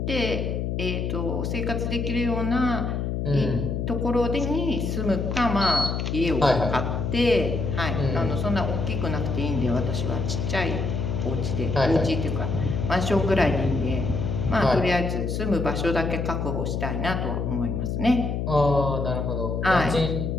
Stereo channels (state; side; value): noise; left; hum, 1 dB below the sound